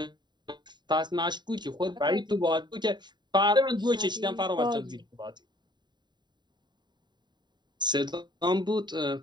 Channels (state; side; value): late; left; 0.21 ms